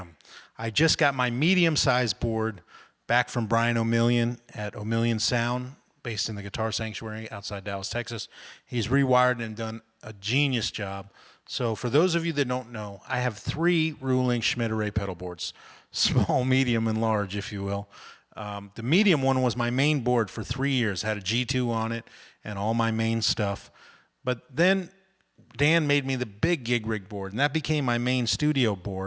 I just got my medium-sized board back from Brian Omilion at Omilion Sound, based in the Guitar Sanctuary outside Dallas, Texas. He's rewired and done a genius job. So for those of you that don't know, I have 3 ruling Schmidt array pedal boards, small, medium, and large, if you will. The medium one was my main board for 3 years, had a G2 on it and all my main stuff. But then Dan made me the big gig rig board, and that became my main studio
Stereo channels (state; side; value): identical; both; correlation 1.00